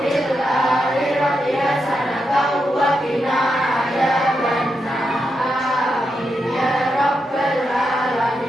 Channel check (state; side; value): normal; both; correlation 0.85